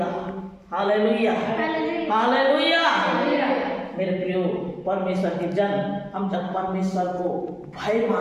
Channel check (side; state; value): both; identical; correlation 1.00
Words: Hallelujah, hallelujah. मेरे प्रियो परमेश्वर के जन, हम जब परमेश्वर को भय